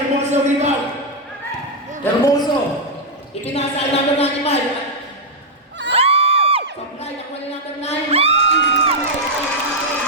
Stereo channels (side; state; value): both; normal; correlation -0.02